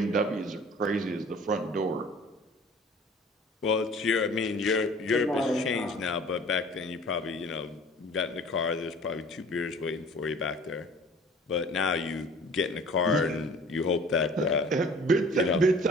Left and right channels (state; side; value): normal; both; correlation 0.48